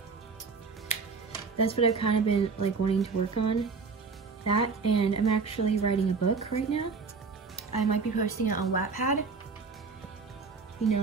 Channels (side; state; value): left; quieter; 4.7 dB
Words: that's what I've kind of been like wanting to work on. That, and I'm actually writing a book right now. I might be posting it on Wattpad. You know